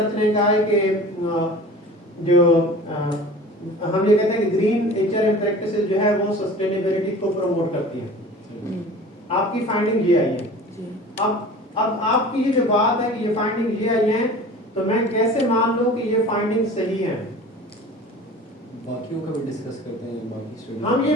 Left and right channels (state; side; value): normal; both; correlation 0.40